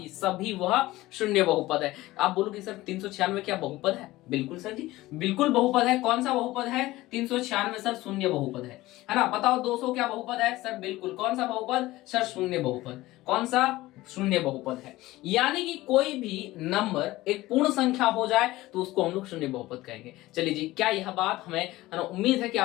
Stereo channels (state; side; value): quieter; right; 17.9 dB